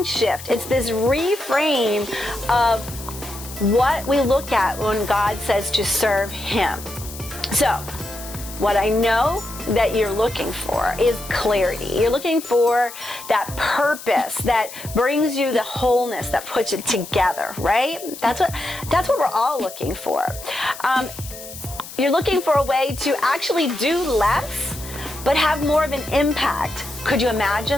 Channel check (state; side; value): noise; left; hiss, 14 dB below the sound